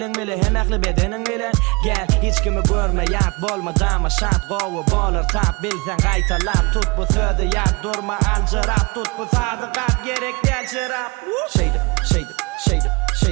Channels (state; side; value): quieter; left; 27.7 dB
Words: bile hem aklı bedening bilen gel hiç kimi görme yat bolma dama şat gowu bolar tap bilsen qaytalap tut bu sözü yat durma alcırap tut bu sadıkat gerek del şırap şeydim şeydim şeydim